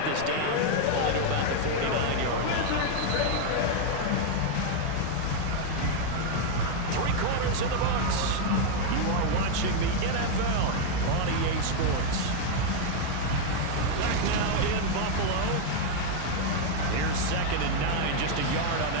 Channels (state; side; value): different; both; correlation 0.01